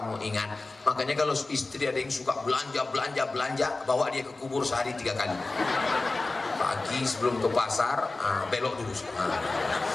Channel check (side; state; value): right; quieter; 3.3 dB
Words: ingat. Makanya kalau istri ada yang suka belanja, bawa dia ke kubur sehari 3 kali. Pagi sebelum ke pasar, belok dulu.